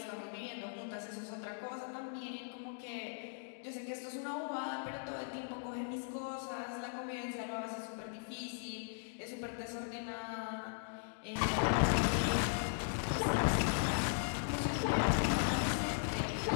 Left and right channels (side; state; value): right; silent; digital silence